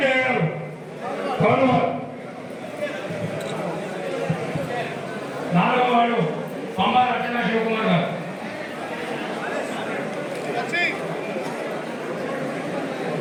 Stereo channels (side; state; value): both; identical; correlation 1.00